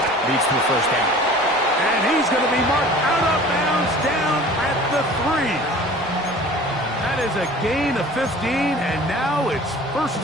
leads to a 1st down. And he's going to be marked out of bounds down at the 3. That is a gain of 15, and now it's 1st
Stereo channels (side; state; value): both; normal; correlation 0.45